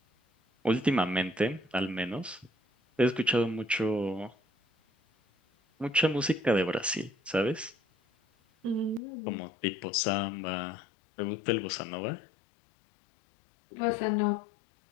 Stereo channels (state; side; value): drops out; right; at 9.0 s